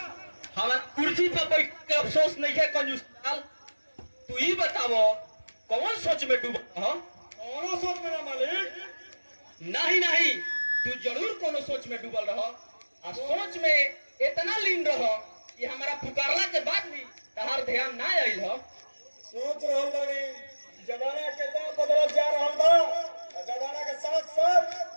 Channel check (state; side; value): inverted; both; correlation -1.00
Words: हमार कुर्सी पर बैठ के अफसोस नहीं है कंजूस लाल। तू ही बतावो कौन सोच में डूबा हो? कौनो सोच में ना मालिक। नहीं नहीं, तू जरूर कोनो सोच में डूबल रहो और सोच में इतना लीन रहो कि हमारा पुकारला के बाद भी तहार ध्यान ना आइल हो। सोच रहल बानी जमाना कितना बदलत जा रहल बा और जमाना के साथ साथ